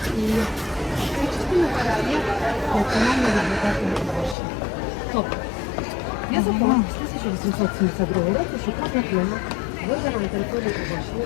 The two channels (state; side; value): drops out; right; at 4.4 s